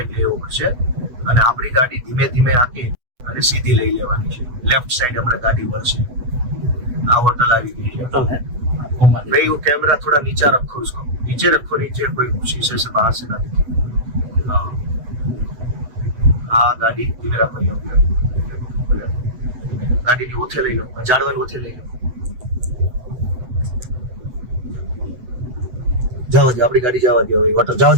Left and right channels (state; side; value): late; left; 8.0 ms